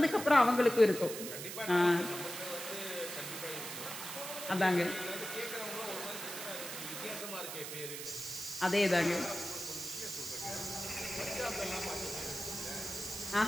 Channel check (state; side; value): noise; right; hiss, 7 dB below the sound